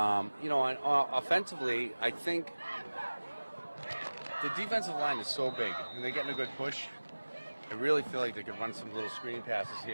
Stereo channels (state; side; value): inverted; both; correlation -1.00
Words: I think the defensive line is so big, and they're getting a good push. I really feel like they could run some little screen passes